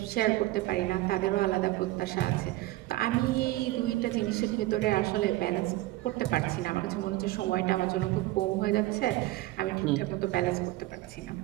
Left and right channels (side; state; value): left; quieter; 17.7 dB